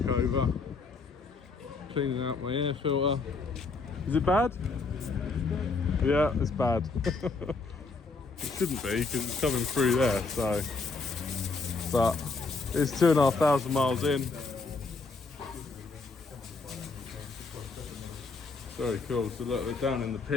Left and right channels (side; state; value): right; quieter; 4.0 dB